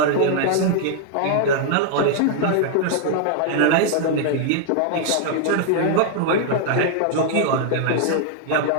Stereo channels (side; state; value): both; different; correlation 0.00